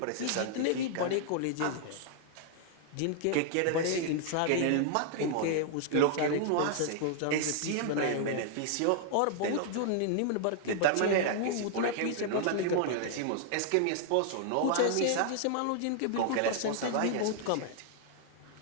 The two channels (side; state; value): both; different; correlation -0.01